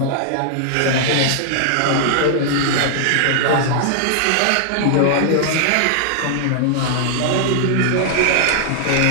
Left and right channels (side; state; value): both; different; correlation -0.01